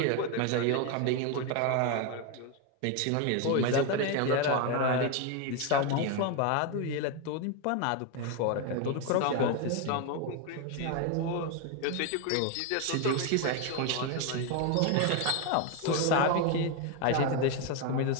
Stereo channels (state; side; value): different; both; correlation 0.01